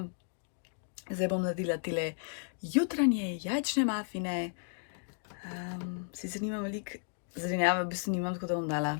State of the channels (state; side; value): silent; right; digital silence